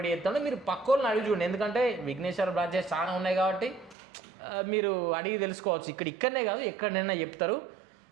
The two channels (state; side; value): drops out; left; at 4.0 s